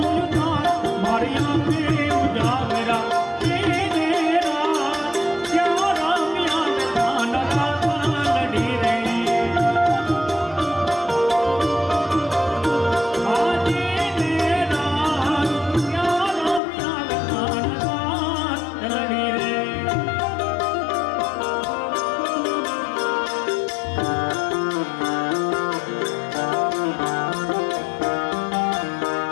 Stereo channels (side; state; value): right; drops out; at 16.6 s